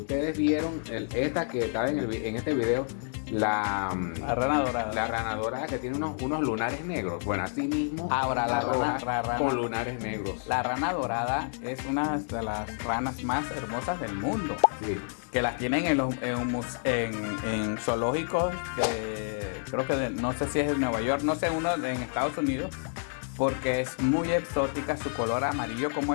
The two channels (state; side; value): silent; right; digital silence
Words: vieron esta que estaba en este video, La rana dorada. la rana dorada que tiene unos lunares negros. Bueno, así mismo. Ahora, la roja rana- con lunares negros. La rana dorada es una de las ranas más hermosas del mundo. Sí. Que las tienen en zoológicos creo que no sé si es de Nueva York, no sé, uno en Estados Unidos, porque es muy exótica, su color amarillo como